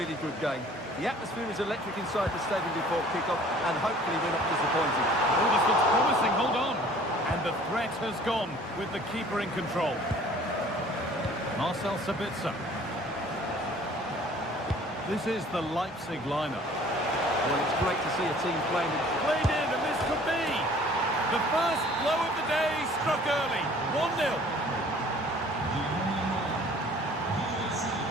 good game. The atmosphere is electric inside the stadium before kick-off, and hopefully we're not disappointed. Oh, this looks promising. Hold on. And the threat has gone with the keeper in control. Marcel Sabitzer. This is the Leipzig lineup. Well, it's great to see a team playing. Played in, and this could be the first blow of the day, struck early. 1-0.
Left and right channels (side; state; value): both; normal; correlation 0.52